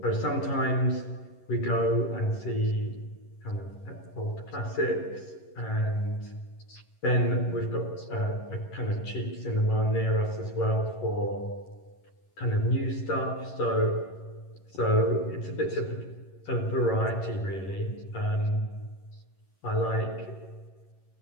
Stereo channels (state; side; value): late; right; 11 ms